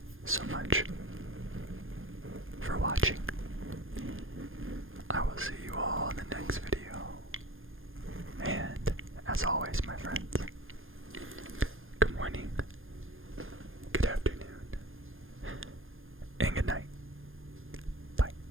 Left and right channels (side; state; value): left; late; 0.59 ms